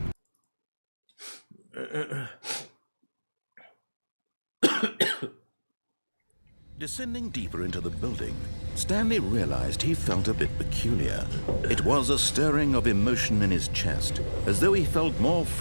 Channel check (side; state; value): both; inverted; correlation -1.00